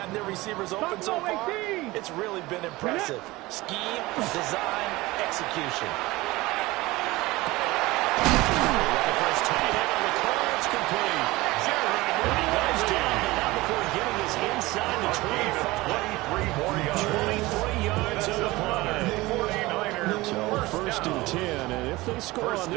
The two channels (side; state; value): left; quieter; 20.3 dB